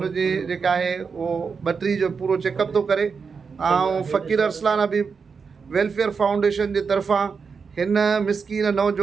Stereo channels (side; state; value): left; quieter; 5.5 dB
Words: जेका आहे उहो ॿटरी जो पूरो चेकअप थो करे। ऐं फ़कीर अरसलान अबी वेलफेयर फाउंडेशन जे तरफ़ां हिन मिसकीन